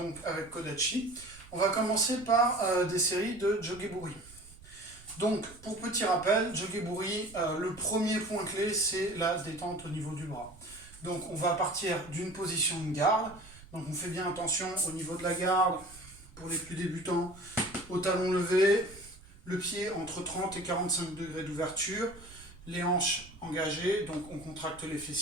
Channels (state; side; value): noise; right; rumble, 20 dB below the sound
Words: avec Kodachi. On va commencer par des séries de Jogeburi. Donc pour petit rappel, Jogeburi, le premier point clé c'est la détente au niveau du bras. Donc on va partir d'une position de garde, donc on fait bien attention au niveau de la garde, pour les plus débutants, au talon levé, le pied entre 30 et 45 degrés d'ouverture, les hanches engagées, donc on contracte les